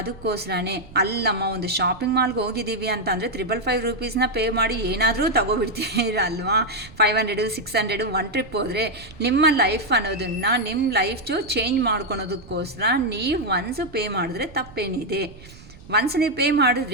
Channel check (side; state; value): right; noise; rumble, 20 dB below the sound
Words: ಅಲ್ಲಮ್ಮ ಒಂದು ಶಾಪಿಂಗ್ ಮಾಲ್ಗೆ ಹೋಗಿದ್ದೀವಿ ಅಂತ ಅಂದರೆ 555 ರೂಪೀಸ್ನ ಪೇ ಮಾಡಿ ಏನಾದರೂ ತಗೋಬಿಡ್ತೀರಲ್ವಾ. 500 600 ಒನ್ ಟ್ರಿಪ್ ಹೋದರೆ ನಿಮ್ಮ ಲೈಫ್ ಅನ್ನೋದನ್ನು ನಿಮ್ಮ ಲೈಫು ಚೇಂಜ್ ಮಾಡ್ಕೊಳೋದಕ್ಕೋಸ್ಕರ ನೀವು ಒನ್ಸು ಪೇ ಮಾಡಿದ್ರೆ ತಪ್ಪೇನಿದೆ. ಒನ್ಸ್ ನೀವು ಪೇ